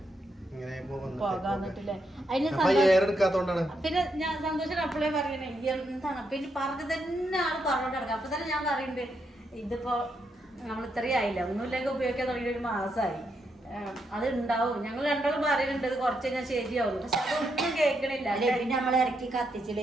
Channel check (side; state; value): both; normal; correlation 0.80